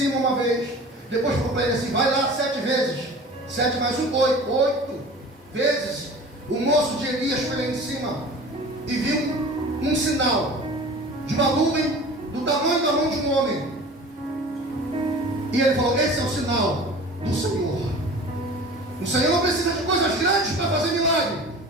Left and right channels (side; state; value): both; normal; correlation 0.40